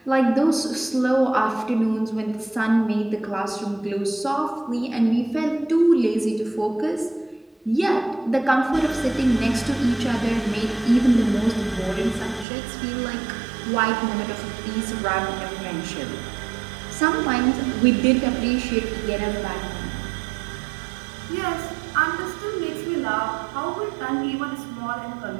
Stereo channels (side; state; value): left; drops out; at 12.5 s